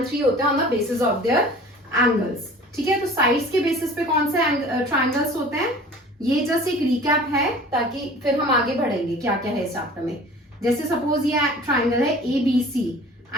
3 होते हैं on the basis of there angles. ठीक है, तो साइड्स के बेसिस पे कौन से ट्रायंगल्स होते हैं, ये जस्ट एक रिकैप है ताकि फिर हम आगे बढ़ेंगे क्या क्या है इस चैप्टर में। जैसे सपोज ये ट्रायंगल है ABC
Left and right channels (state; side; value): normal; both; correlation 0.45